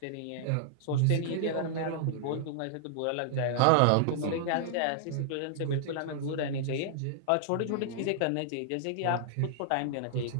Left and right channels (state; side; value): different; both; correlation -0.01